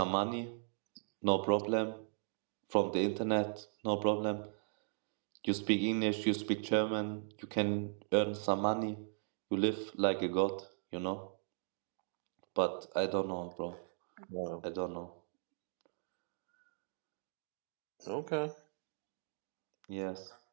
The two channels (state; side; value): silent; left; digital silence